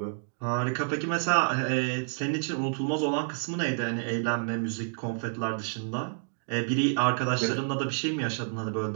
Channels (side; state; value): left; silent; digital silence